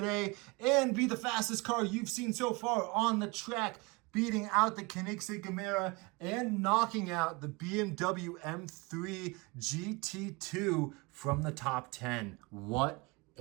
and be the fastest car you've seen so far on the track, beating out the Koenigsegg Camaro and knocking out the BMW M3 GT2 from the top 10. What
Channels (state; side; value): quieter; left; 26.5 dB